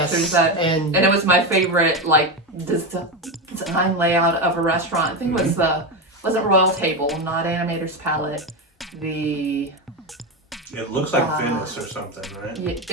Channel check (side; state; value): both; normal; correlation 0.15